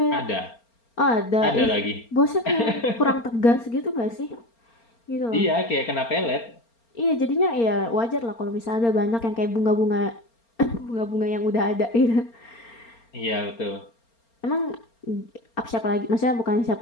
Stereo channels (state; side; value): late; right; 4.3 ms